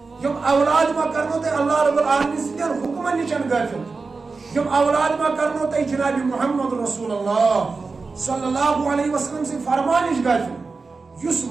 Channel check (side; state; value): left; quieter; 4.2 dB